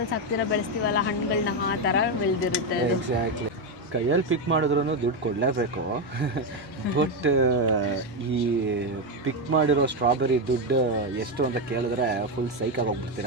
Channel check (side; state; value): both; normal; correlation 0.08